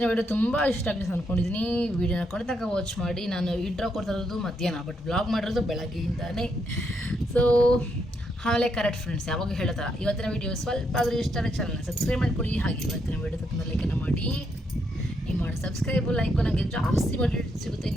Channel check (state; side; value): normal; both; correlation 0.78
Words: ವಿಡಿಯೋ ತುಂಬ ಇಷ್ಟ ಆಗಿದೆ ಅಂದ್ಕೊಂಡಿದ್ದೀನಿ ವಿಡಿಯೋನ ಕೊಡ್ತಕ್ಕ ವಾಚ್ ಮಾಡಿ ನಾನು ಇಂಟ್ರೋ ಕೊಡ್ತಾ ಇರೋದು ಮಧ್ಯಾಹ್ನ ಬಟ್ ಬ್ಲಾಗ್ ಮಾಡಿರೋದು ಬೆಳಗ್ಗೆಯಿಂದಾನೇ ಸೊ ಆಮೇಲೆ ಕರೆಕ್ಟ್ ಫ್ರೆಂಡ್ಸ್ ಯಾವಾಗ ಹೇಳ್ತಾರ ಇವತ್ತಿನ ವಿಡಿಯೋ ಸ್ವಲ್ಪ ಆದರೂ ಇಷ್ಟ ಆದರೆ ಚಾನಲ್ನ ಸಬ್ಸ್ಕ್ರೈಬ್ ಮಾಡ್ಕೊಳ್ಳಿ ಹಾಗೆ ಇವತ್ತಿನ ವಿಡಿಯೋ ತುಂಬ ಲೈಕನ್ನು ಮಾಡಿ ನೀವು ಮಾಡಿ ಸಬ್ಸ್ಕ್ರೈಬು ಲೈಕು ನನಗೆ ಜಾಸ್ತಿ ಮೋಟಿವೇಟ್ ಸಿಗುತ್ತೆ